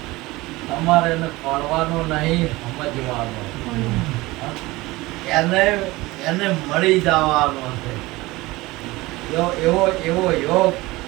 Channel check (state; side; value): quieter; left; 20.5 dB